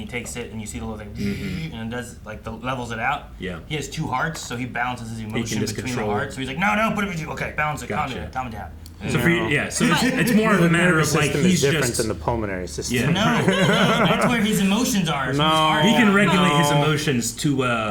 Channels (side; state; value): both; identical; correlation 1.00